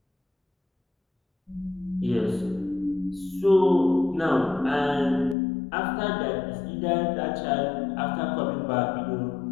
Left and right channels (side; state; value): right; drops out; at 5.4 s